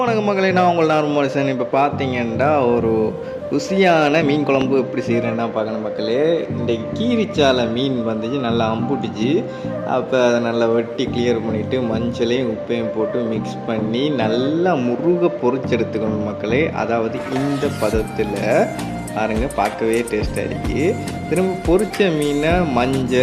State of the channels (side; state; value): both; identical; correlation 1.00